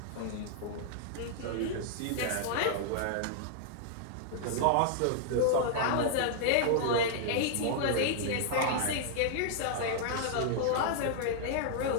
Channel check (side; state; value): both; different; correlation -0.01